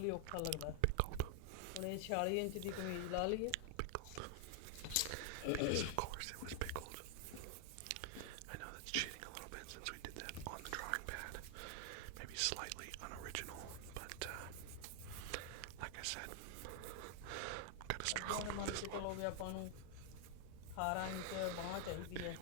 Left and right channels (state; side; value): different; both; correlation 0.00